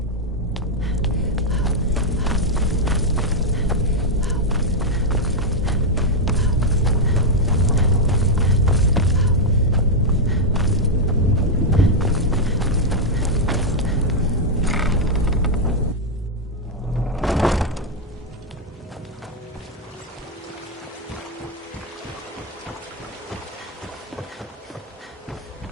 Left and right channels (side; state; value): both; normal; correlation 0.00